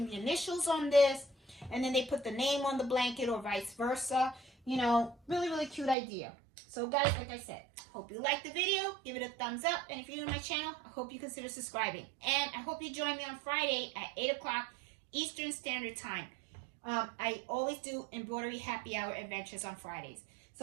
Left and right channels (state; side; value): drops out; left; at 6.0 s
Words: the initials on this, and then they put the name on the blanket or vice versa. You know, really, really cute idea. So guys, like I said, hope you liked the video. Give it a thumbs up. And if you're new to my channel, I hope you consider subscribing. And I hope you join me on Friday at 8 o'clock Eastern Standard Time. I always do embroidery happy hour adventures on Fridays.